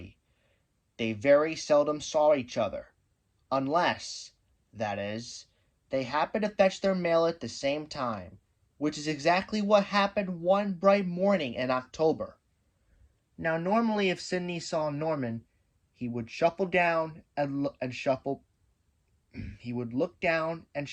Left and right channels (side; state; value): both; identical; correlation 1.00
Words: they very seldom saw each other, unless, that is, they happened to fetch their mail at the same time, which is exactly what happened one bright morning in October. Now, normally if Sidney saw Norman, he would shuffle down and shuffle. He would look down and